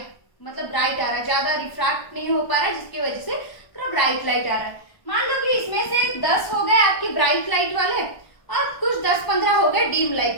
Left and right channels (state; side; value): late; right; 1.2 ms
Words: मतलब ब्राइट आ रहा है, ज्यादा रिफ्रैक्ट नहीं हो पा रहा है, जिसकी वजह से पूरा ब्राइट लाइट आ रहा है। मान लो कि इसमें से 10 हो गए आपके ब्राइट लाइट वाले और कुछ 10-15 हो गए डीम